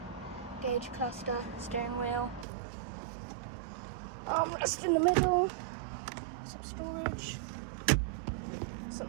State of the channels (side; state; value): left; drops out; at 2.5 s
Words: gauge cluster, steering wheel, armrest in the middle, some storage, some